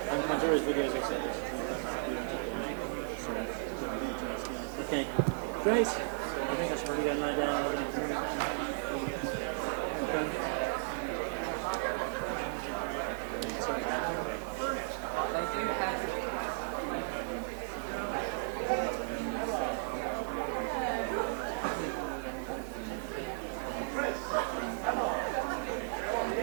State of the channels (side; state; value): left; silent; digital silence